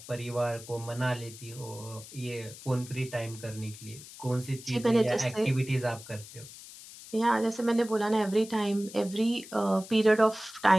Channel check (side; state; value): left; noise; hiss, 16 dB below the sound